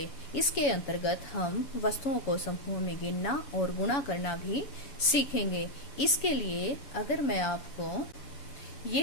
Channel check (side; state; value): right; late; 7.1 ms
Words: इसके अंतर्गत हम वस्तुओं को समूह में गिनना और गुणा करना भी सीखेंगे। इसके लिए अगर मैं आपको ये